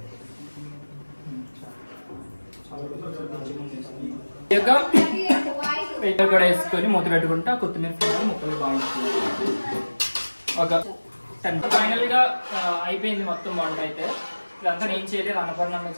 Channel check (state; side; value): inverted; both; correlation -1.00